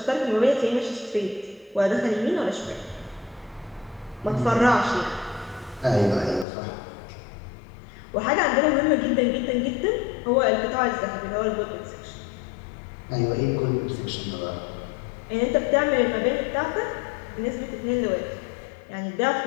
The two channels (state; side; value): drops out; right; at 6.5 s